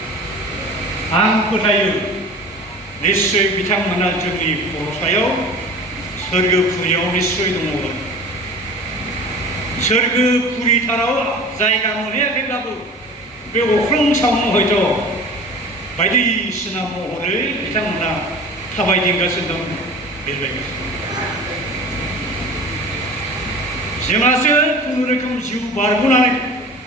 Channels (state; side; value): normal; both; correlation 0.39